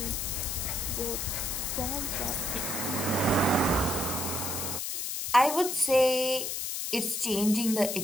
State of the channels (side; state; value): left; noise; hiss, 2 dB below the sound